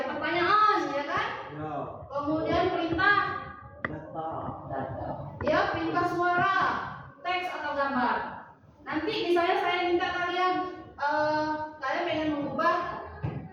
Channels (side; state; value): both; identical; correlation 1.00